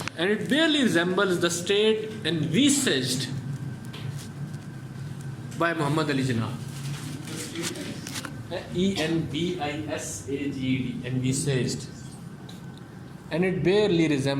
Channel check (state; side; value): identical; both; correlation 1.00